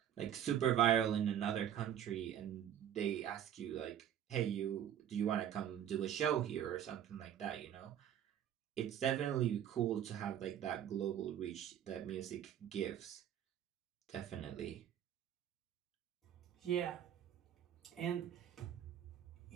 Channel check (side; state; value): left; quieter; 10.1 dB